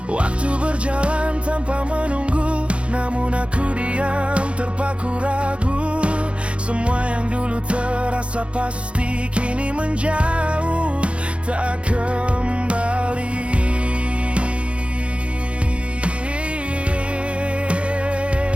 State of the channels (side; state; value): left; late; 0.060 ms